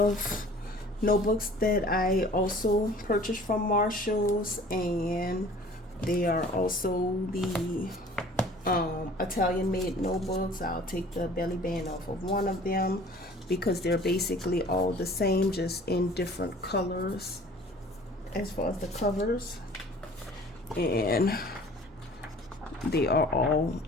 notebooks that I also purchased from Marshalls, and they are also the Italian made notebooks. I'll take the belly band off of one of them because they're basically all the same, just in different colors as far as the covers. And they are all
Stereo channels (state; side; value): normal; both; correlation 0.49